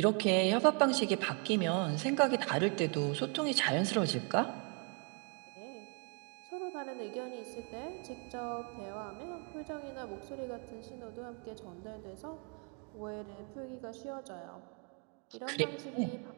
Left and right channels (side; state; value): left; quieter; 36.4 dB